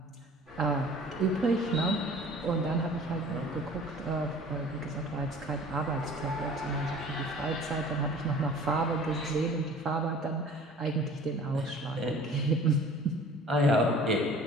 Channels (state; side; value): normal; both; correlation 0.47